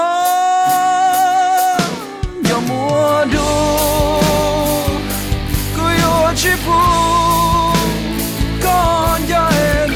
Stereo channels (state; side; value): identical; both; correlation 1.00